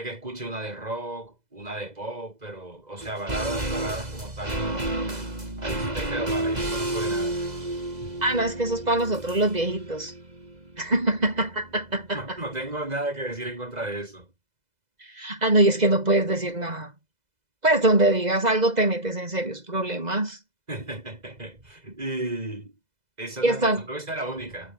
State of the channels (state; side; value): late; left; 2.0 ms